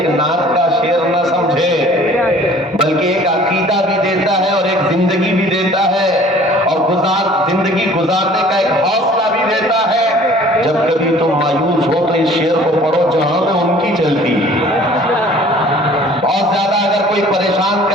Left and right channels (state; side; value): normal; both; correlation 0.51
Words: نعت کا شعر نہ سمجھے بلکہ ایک عقیدہ بھی دیتا ہے اور ایک زندگی بھی دیتا ہے اور زندگی گزارنے کا ایک حوصلہ بھی دیتا ہے. جب کبھی تم مایوس ہو تو اس شعر کو پڑھو جہاں میں ان کی چلتی. بہت زیادہ اگر کوئی پریشان